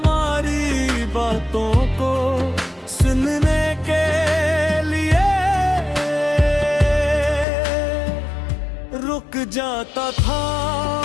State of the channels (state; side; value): drops out; right; at 7.5 s